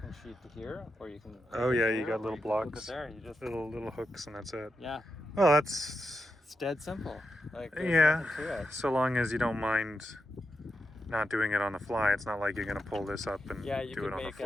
sheet to here, or you can. Oh hook it yeah, here, you got or little can hook it blocks, there. You just little hooks, and that's it. yeah, Well, that's it's dead simple. Like there's yeah. nothing to it. So long as you don't mind not doing it on the fly. It's not like you're gonna pull this up and Yeah, you do can it on the make a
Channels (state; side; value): normal; both; correlation 0.87